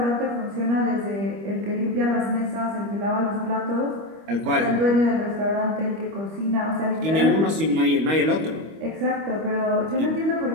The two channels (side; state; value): left; late; 25 ms